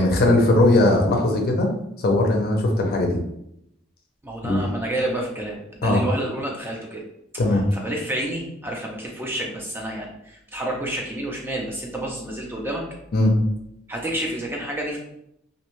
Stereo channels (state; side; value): normal; both; correlation 0.60